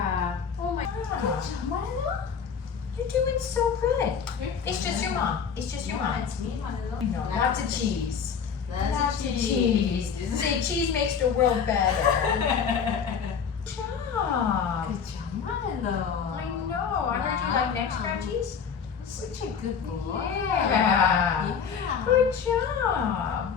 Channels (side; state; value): right; quieter; 6.7 dB